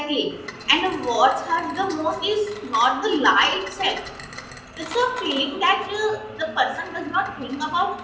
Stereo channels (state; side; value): identical; both; correlation 1.00